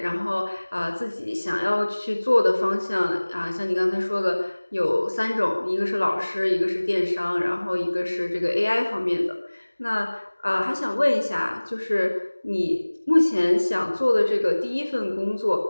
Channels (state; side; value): inverted; both; correlation -1.00